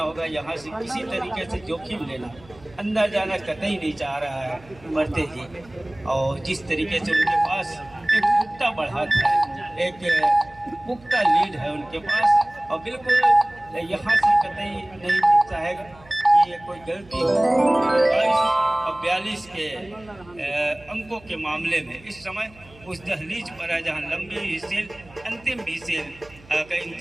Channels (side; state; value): right; noise; hum, 24 dB below the sound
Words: होगा। यहाँ से किसी तरीके से जोखिम लेना अंदर जाना कतई नहीं चाह रहा है मरते ही। और जिस तरीके से उनके पास एक पुख्ता बढ़त है, एक पुख्ता लीड है उनके पास और बिल्कुल यहाँ से कतई नहीं दिखता है कि ये कोई गलती हो। 22 और 42 के अंकों के मामले में इस समय उस दहलीज पर है जहाँ लंबी विसेल अंतिम विसेल का